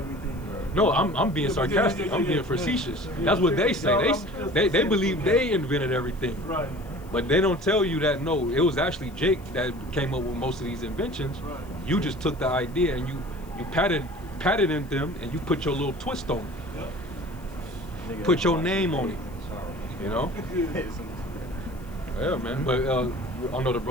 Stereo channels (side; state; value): left; noise; hiss, 26 dB below the sound